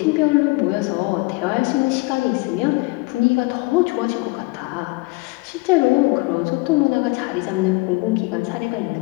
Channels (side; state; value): right; quieter; 25.1 dB